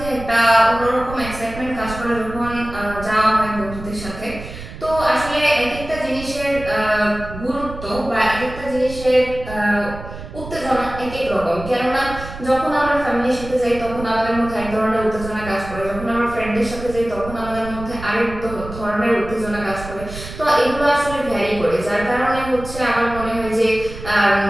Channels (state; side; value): noise; right; rumble, 12 dB below the sound